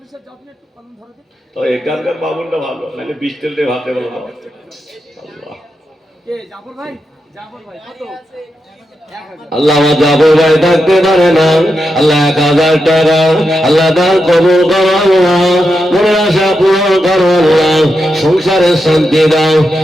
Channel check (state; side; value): normal; both; correlation 0.87